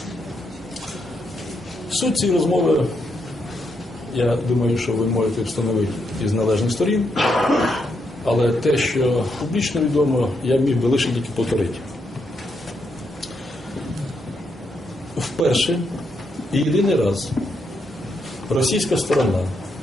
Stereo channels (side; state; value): both; normal; correlation 0.79